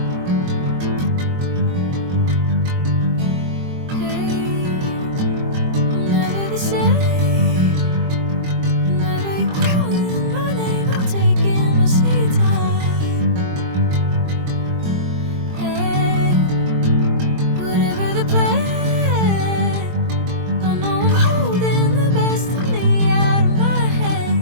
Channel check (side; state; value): left; late; 22 ms